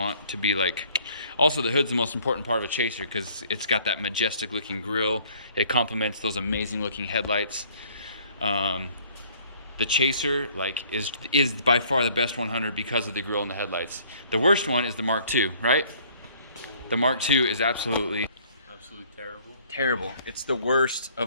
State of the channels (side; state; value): both; inverted; correlation -0.58